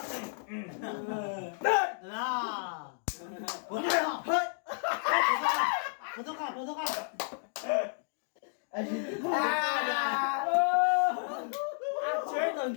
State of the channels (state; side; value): silent; right; digital silence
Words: Đó. Bốn mươi hả? Bốn thuốc à? Ăn chơi còn